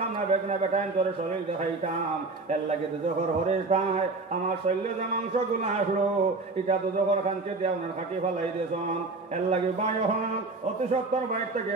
না বেগনা বেটাইন তোর শরীর দেখাইতাম এর লাগে দুজখর হরিষ্ঠায় আমার শৈল্য যে মাংস গুলো আসলো এটা দুজখর খানকে দিয়ে আপনার খাটি ফেলাই দিয়েছেন এর লাগে বাই হন অতি সত্তর বাইর থেকে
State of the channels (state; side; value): quieter; left; 3.6 dB